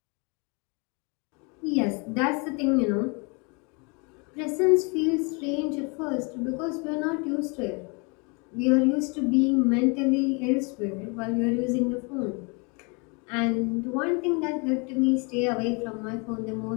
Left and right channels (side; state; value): right; quieter; 31.9 dB